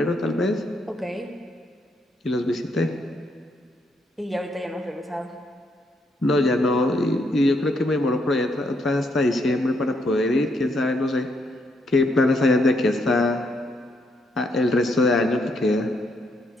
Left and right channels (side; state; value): both; normal; correlation 0.75